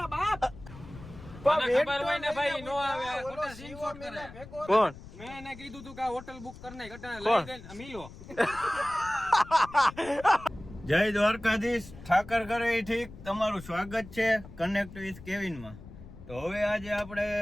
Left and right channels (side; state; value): left; noise; rumble, 16 dB below the sound